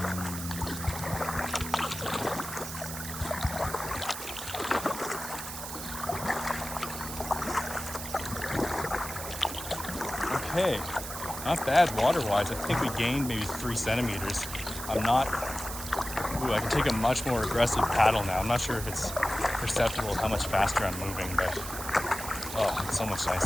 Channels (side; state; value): right; noise; hiss, 8 dB below the sound